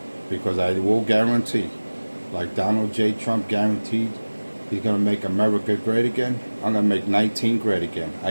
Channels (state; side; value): inverted; both; correlation -1.00